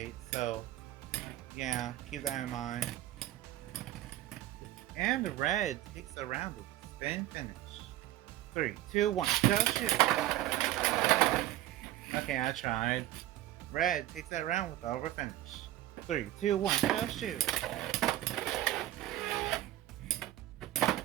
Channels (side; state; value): left; quieter; 14.5 dB